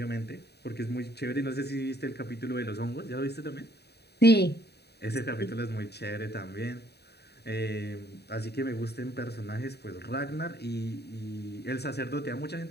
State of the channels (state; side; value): late; right; 0.48 ms